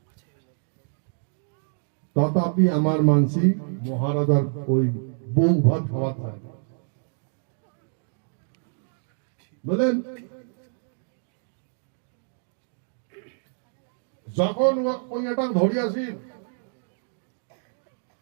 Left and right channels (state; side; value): silent; left; digital silence